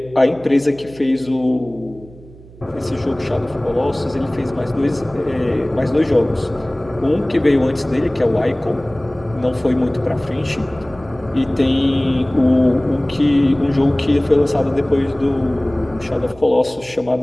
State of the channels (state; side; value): noise; right; hum, 21 dB below the sound